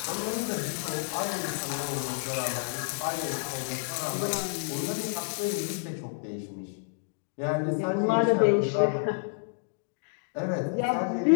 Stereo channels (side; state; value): right; silent; digital silence